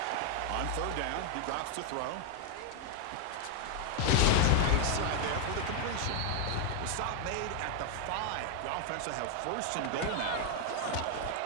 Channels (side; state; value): both; different; correlation 0.00